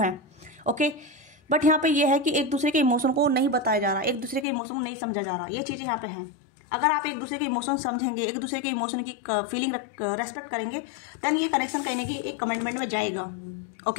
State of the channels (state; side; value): drops out; right; at 4.5 s